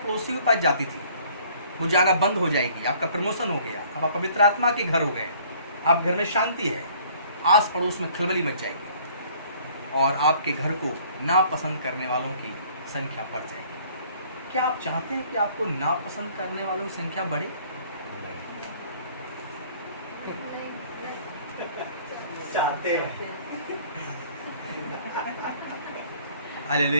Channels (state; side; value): inverted; both; correlation -0.56